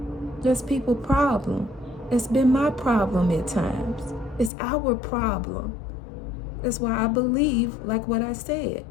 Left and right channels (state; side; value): drops out; right; at 4.5 s